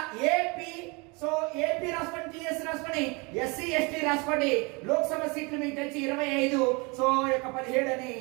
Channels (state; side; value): quieter; left; 28.9 dB